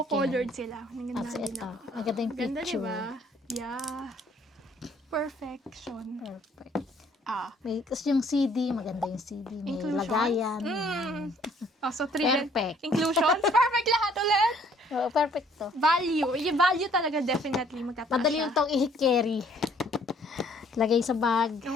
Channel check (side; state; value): both; normal; correlation 0.61